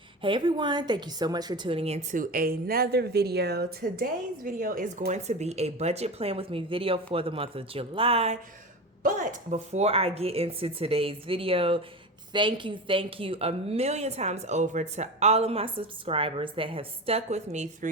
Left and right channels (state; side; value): normal; both; correlation 0.26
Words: Hey everyone, thank you so much for tuning into another video. Today's video is going to be a budget plan with me video for the month of July. But before I get into today's video, thank you a million times over to all of my subscribers that have stuck with me